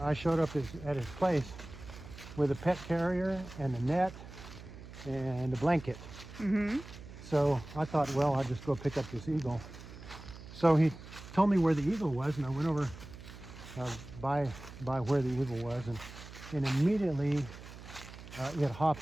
showed up at his place with a pet carrier and a net and a blanket. So I thought, well, I'll just go pick up this eagle. So he told me where the eagle was, and I went over by where the eagle was, and immediately it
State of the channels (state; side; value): noise; right; hum, 15 dB below the sound